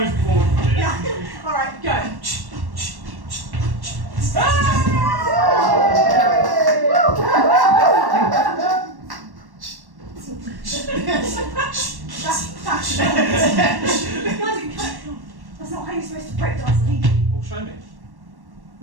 bored of it. Yeah. Alright, go. That's not how you're supposed to breakdance legally. Well, show me.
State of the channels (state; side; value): late; left; 1.1 ms